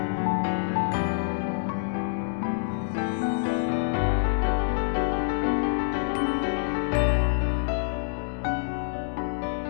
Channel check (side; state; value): right; silent; digital silence